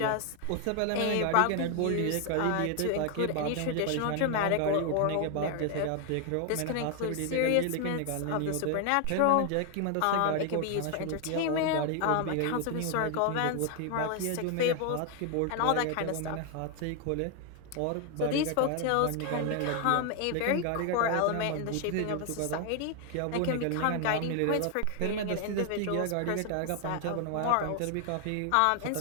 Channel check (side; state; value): both; different; correlation 0.00